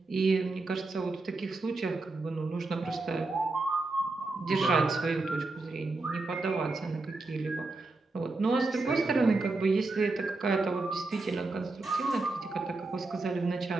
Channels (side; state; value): left; quieter; 3.4 dB